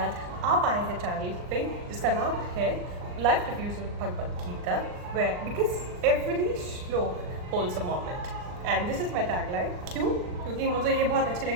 आप आए हैं channel पे जिसका नाम है life reviews with Bhagavad Gita, where because every shloka holds a moment and this is my tagline. क्यों? क्योंकि मुझे ये बहुत अच्छी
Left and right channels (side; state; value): left; late; 39 ms